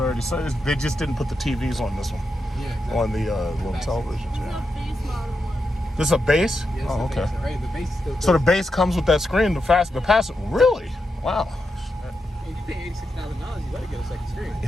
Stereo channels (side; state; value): both; normal; correlation 0.86